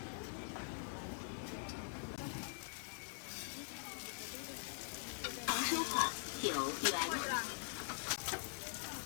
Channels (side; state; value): right; silent; digital silence